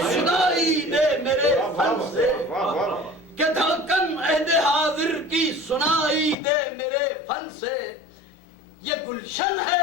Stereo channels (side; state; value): right; drops out; at 6.4 s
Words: سنائی دے میرے فن سے, کہ دھڑکن عہد حاضر کی سنائی دے میرے فن سے. یہ گلشن